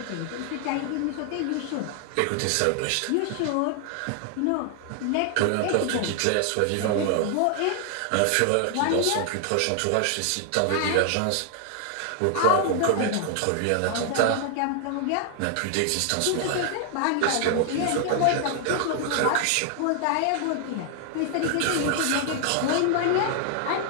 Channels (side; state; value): both; different; correlation 0.00